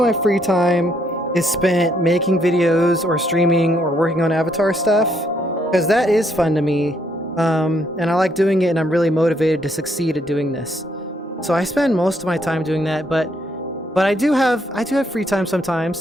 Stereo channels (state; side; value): normal; both; correlation 0.72